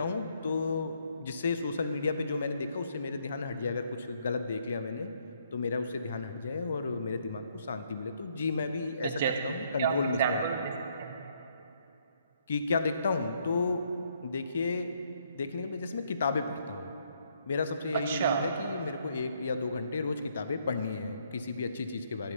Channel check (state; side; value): inverted; both; correlation -0.71